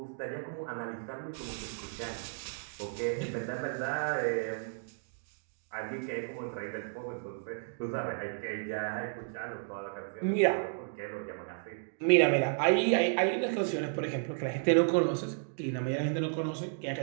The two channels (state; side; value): silent; left; digital silence